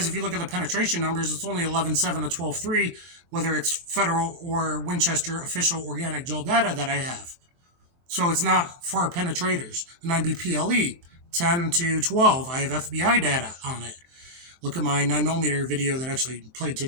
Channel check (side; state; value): left; late; 23 ms